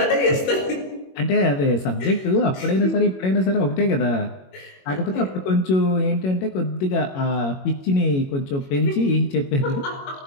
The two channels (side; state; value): right; late; 22 ms